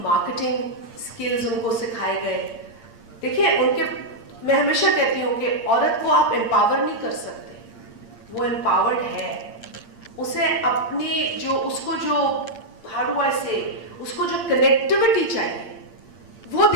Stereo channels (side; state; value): right; late; 8.7 ms